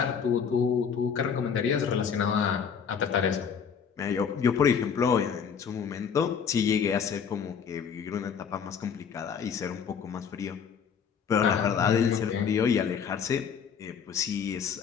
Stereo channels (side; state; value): right; quieter; 7.0 dB